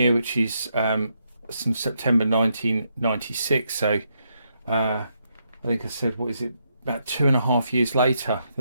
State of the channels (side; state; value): both; inverted; correlation -0.79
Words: which is from September 1996. So I think I said, what is it, about 2.5 years later